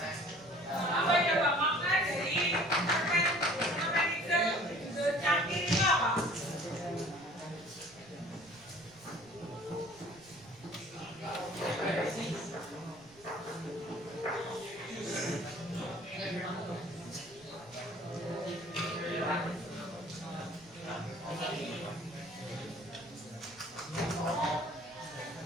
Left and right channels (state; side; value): noise; right; rumble, 26 dB below the sound